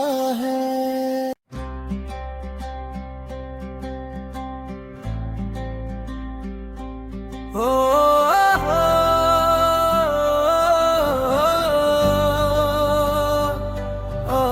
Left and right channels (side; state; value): both; identical; correlation 1.00